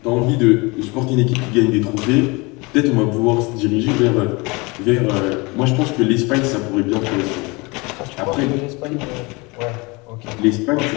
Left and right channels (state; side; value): quieter; right; 26.1 dB